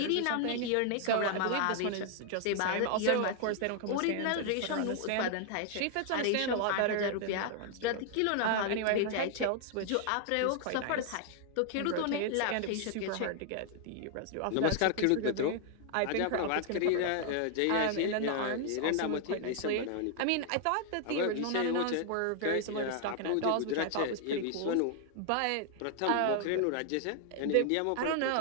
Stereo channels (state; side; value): different; both; correlation 0.00